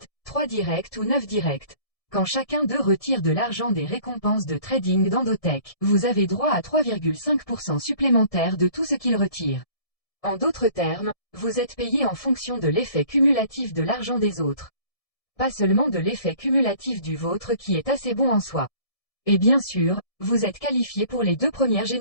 3 directs ou 9 directs. Quand chacun d'eux retire de l'argent des récompenses de trading d'Endotech, vous avez droit à 3,5% supplémentaire de tout ce qu'il retire. En d'autres termes, vous êtes payé en fonction de l'effet cumulatif de l'argent des autres. Pas seulement de l'effet cumulatif du vôtre qui est assez bon en soi. Et bien sûr, vous êtes qualifié pour les 2 premières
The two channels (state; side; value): late; right; 1.7 ms